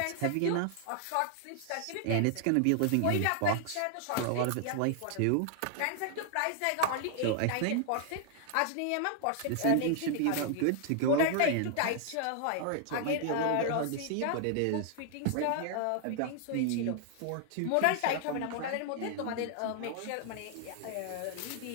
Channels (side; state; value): both; different; correlation 0.00